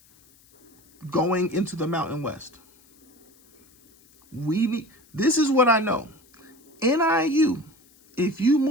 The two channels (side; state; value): left; noise; hiss, 30 dB below the sound